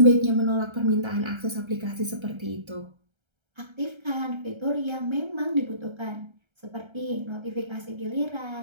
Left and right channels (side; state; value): left; late; 1.3 ms